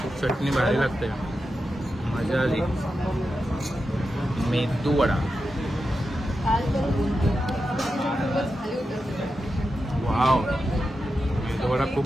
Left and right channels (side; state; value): both; normal; correlation 0.89